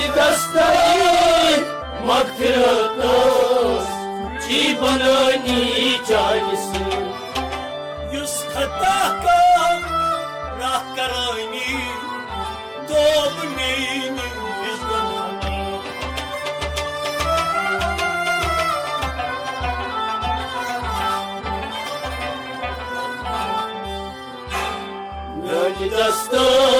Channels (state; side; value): identical; both; correlation 1.00